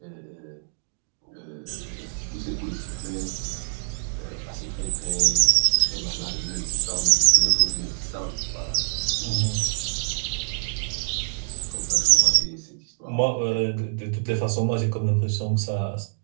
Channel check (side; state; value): left; silent; digital silence